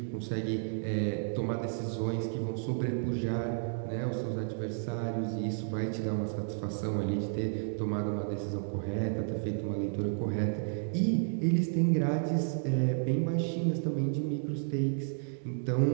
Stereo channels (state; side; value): silent; left; digital silence